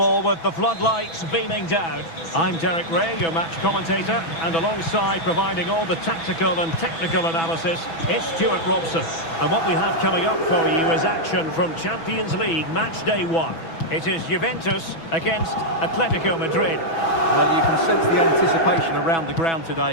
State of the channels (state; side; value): late; right; 6.1 ms